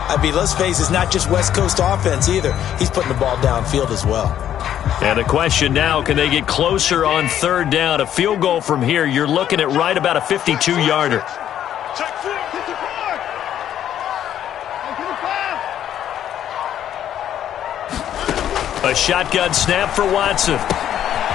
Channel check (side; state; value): right; quieter; 10.6 dB